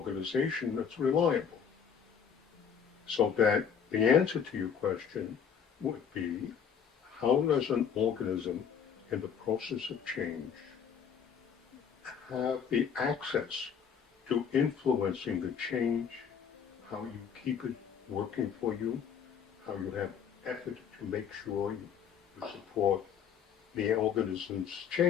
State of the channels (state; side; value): quieter; right; 7.5 dB